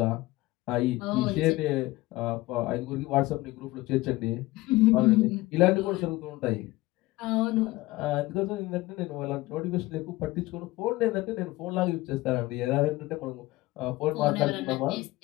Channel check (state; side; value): quieter; right; 19.2 dB